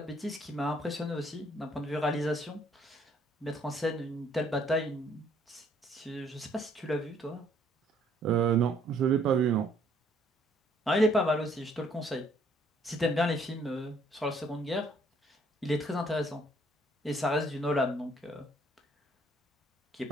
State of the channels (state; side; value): normal; both; correlation 0.64